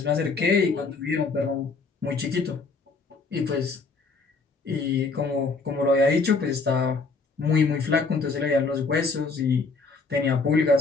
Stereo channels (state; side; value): quieter; right; 4.2 dB